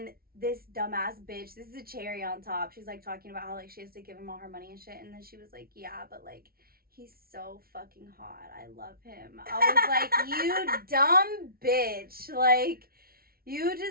this dumbass bitch, this is a cherry on top, she's like talking about how like she has to give him all her money and shit. And then she was like, yeah, but like he's so fucking hot, I love him. I was like, you dumb bitch. Like, you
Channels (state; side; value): late; left; 0.44 ms